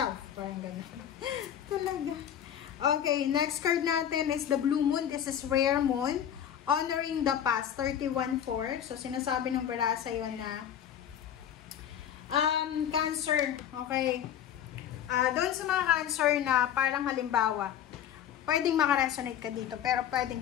Parang gano'n. Talaga. Okay, next card natin is the Blue Moon. This is Rare Moon. Honoring the past, 31-4. So, sinasabi ng baraha sa'yo na Cancer, okay. Doon sa mga Cancer na parang halimbawa, pwedeng makaresonate ka dito, pero pwedeng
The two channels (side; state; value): right; quieter; 9.7 dB